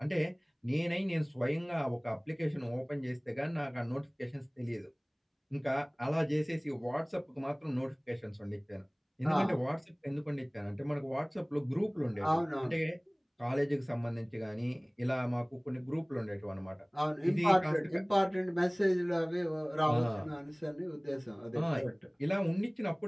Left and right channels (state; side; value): identical; both; correlation 1.00